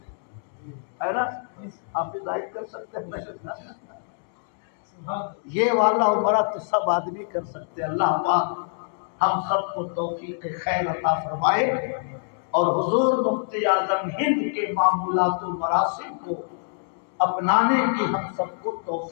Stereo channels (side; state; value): right; silent; digital silence